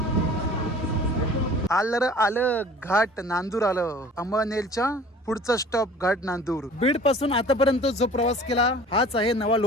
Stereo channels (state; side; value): normal; both; correlation 0.47